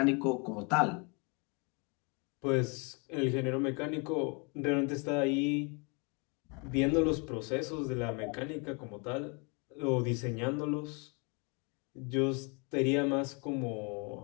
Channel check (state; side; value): quieter; right; 32.6 dB